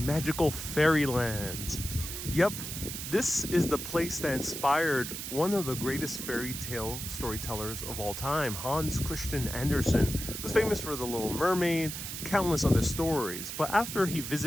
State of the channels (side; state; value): right; noise; hiss, 7 dB below the sound